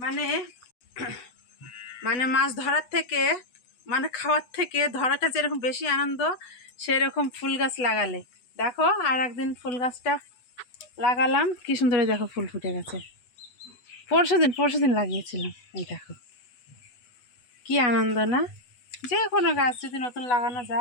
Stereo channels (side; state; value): right; late; 8.1 ms